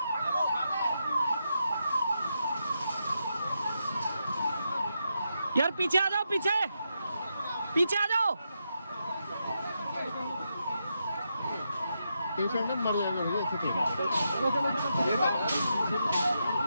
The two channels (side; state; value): both; inverted; correlation -0.84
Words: यार पीछे आ जाओ, पीछे पीछे आ जाओ। मर जाएगा।